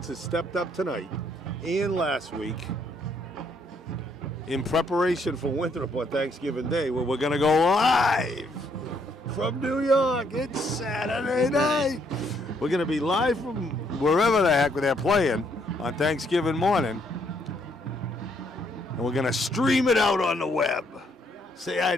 has stepped up tonight and last week in preparation for Winthrop on Thanksgiving Day, where we're going to go live from New York. It's Saturday night. We're going to be live from wherever the heck they're playing on Thanksgiving morning. And we're going to stream it out on the web. Say hi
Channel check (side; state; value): both; normal; correlation 0.70